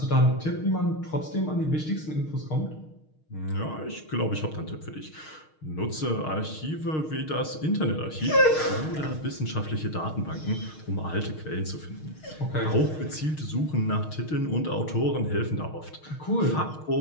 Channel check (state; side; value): late; right; 6.5 ms